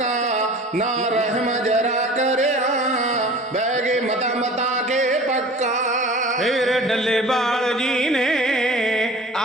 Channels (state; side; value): normal; both; correlation 0.42